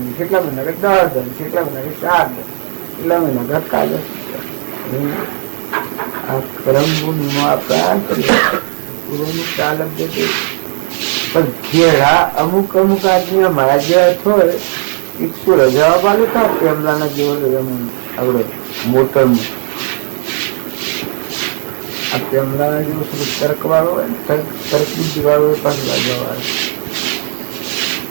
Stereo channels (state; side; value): silent; left; 68 dB below the other